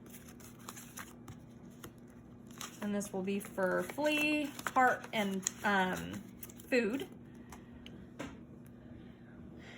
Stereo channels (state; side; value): identical; both; correlation 1.00